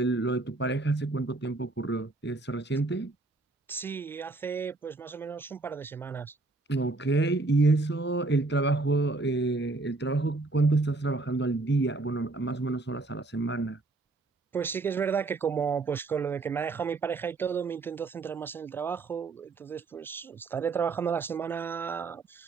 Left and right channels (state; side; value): quieter; left; 3.4 dB